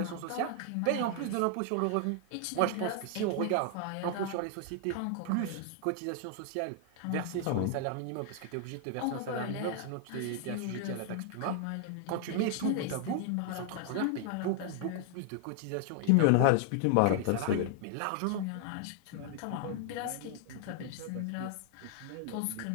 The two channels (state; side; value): different; both; correlation 0.00